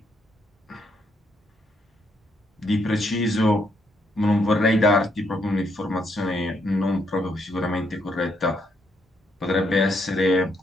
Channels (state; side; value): normal; both; correlation 0.75